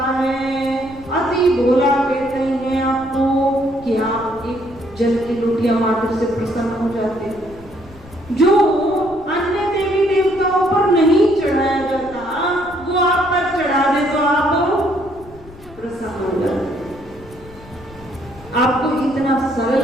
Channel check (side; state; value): left; noise; rumble, 21 dB below the sound